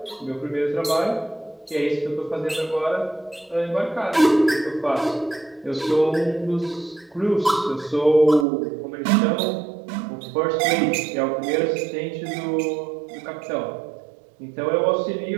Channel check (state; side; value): drops out; left; at 8.5 s